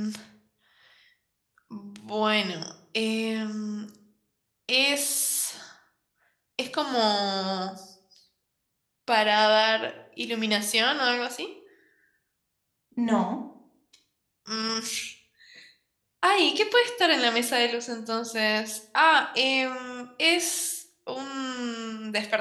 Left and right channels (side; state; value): both; identical; correlation 1.00